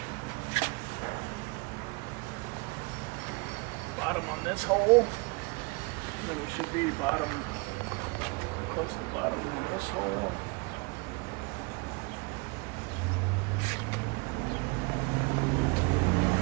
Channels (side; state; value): left; quieter; 28.1 dB